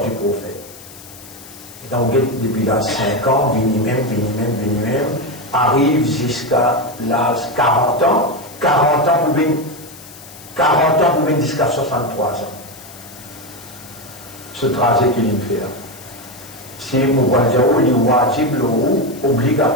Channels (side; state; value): left; noise; hiss, 18 dB below the sound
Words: du prophète? Et donc, depuis là 5 ans, vini même, arrive jusqu'à l'âge 40 ans, 40 ans pour venir jusqu'à 63 ans. Ce trajet qu'il fait. Si nous voyons le wajib, le